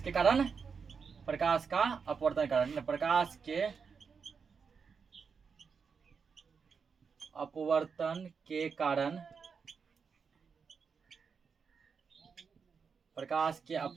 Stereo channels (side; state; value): left; quieter; 5.8 dB